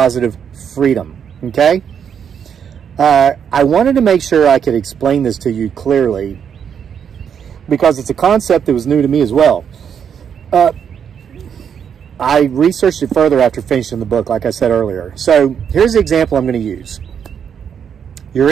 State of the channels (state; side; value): quieter; left; 7.8 dB